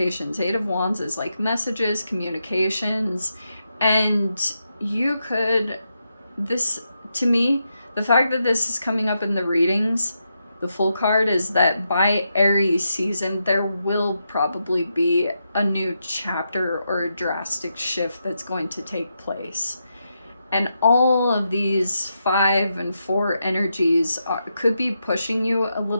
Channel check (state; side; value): inverted; both; correlation -0.85